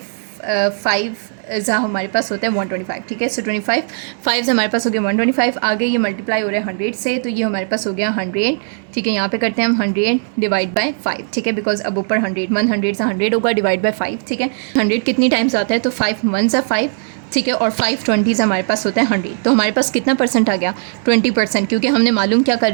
5 ज़ा हमारे पास होता है 125, ठीक है। सो 25 5 हमारे पास हो गया 125, आगे ये मल्टीप्लाई हो रहा है 100 से, तो ये हमारे पास हो गया 100, ठीक है। यहाँ पे करते हैं हम 100 डिवाइड बाय 5, ठीक है, बिकॉज अब ऊपर 100 से 100 होगा डिवाइड बाय 5, ठीक है। 100 कितनी टाइम्स आता है, तो 5 1 ज़ा 5, ठीक है, और 5 20 हमारे पास होता है 100। तो हमारे पास कितना परसेंट आ गया, 20%, क्योंकि हमने मालूम क्या कर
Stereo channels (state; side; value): silent; left; 68 dB below the other